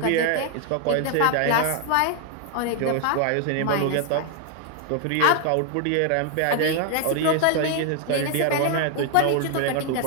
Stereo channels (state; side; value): different; both; correlation 0.00